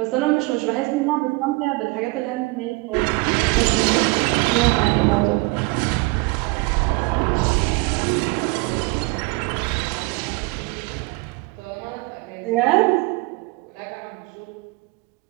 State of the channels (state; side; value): quieter; left; 25.5 dB